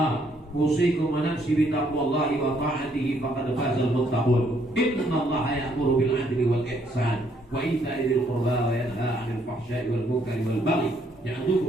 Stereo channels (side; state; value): both; normal; correlation 0.69